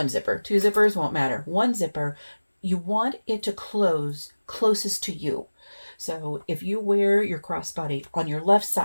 zipper, 2 zippers won't matter. 1 zipper, you want it to close closest to you. So if you wear your crossbody on your left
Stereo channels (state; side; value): inverted; both; correlation -1.00